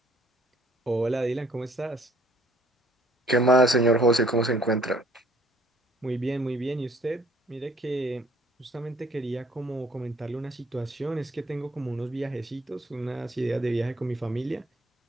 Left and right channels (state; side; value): normal; both; correlation 0.58